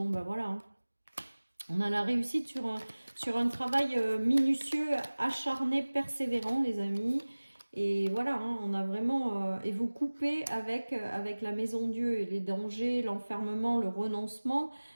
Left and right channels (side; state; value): both; inverted; correlation -1.00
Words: ben voilà, hein. On a la réussite sur un travail minutieux, acharné, persévérant, les amis. Et voilà, hein, on a vraiment... et vous coupez avec la maison Dieu et les dangers, l'enfermement, le renoncement.